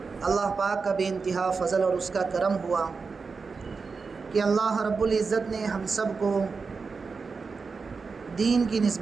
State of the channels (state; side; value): quieter; left; 4.8 dB